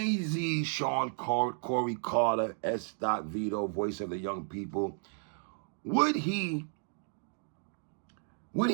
Sean Corey Carter, S. Vito, voice of the young people, would he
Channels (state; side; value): silent; left; 56 dB below the other